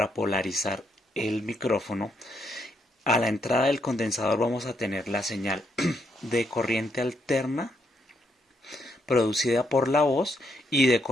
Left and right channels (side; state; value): both; normal; correlation 0.76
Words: polarizar el micrófono, a la entrada del condensador vamos a tener la señal de corriente alterna producida por la voz y de